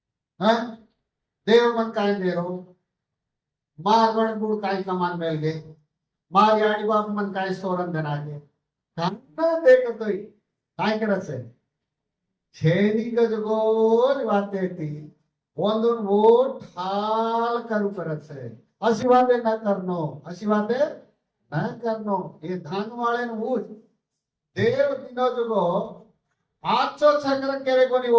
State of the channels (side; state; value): both; identical; correlation 1.00